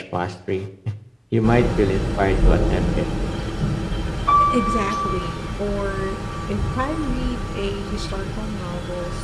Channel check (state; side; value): identical; both; correlation 1.00